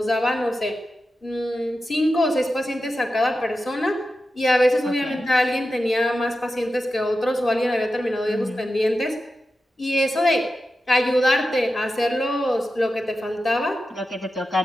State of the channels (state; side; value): normal; both; correlation 0.91